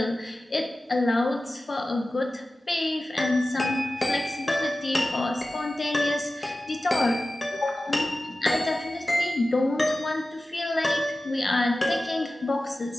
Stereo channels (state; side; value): normal; both; correlation 0.95